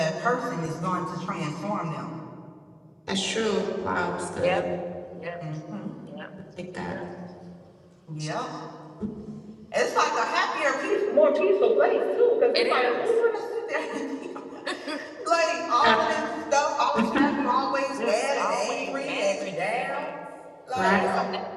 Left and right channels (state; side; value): identical; both; correlation 1.00